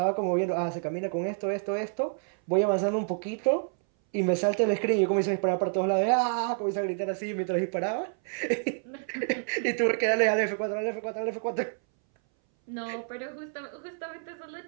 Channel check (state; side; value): silent; left; 59 dB below the other